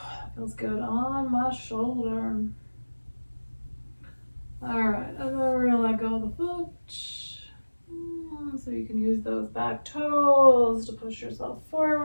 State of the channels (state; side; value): inverted; both; correlation -1.00